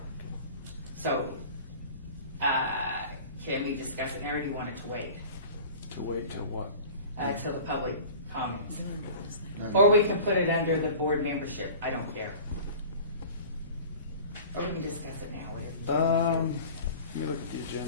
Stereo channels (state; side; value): inverted; both; correlation -0.40